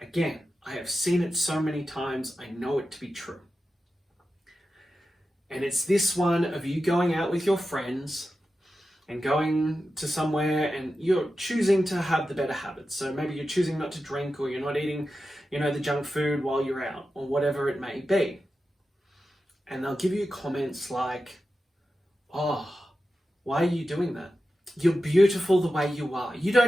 again, I have seen it so many times, I know it to be true. And it's this one of you going out with your friends and going to somewhere and you're choosing to have the better habits. So maybe you're choosing not to drink, or you're not eating, the junk food while you're out, or whatever it may be. And they'll give you comments like, "Oh, why are you doing that? You're beautiful the way you are. You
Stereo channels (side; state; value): both; normal; correlation 0.92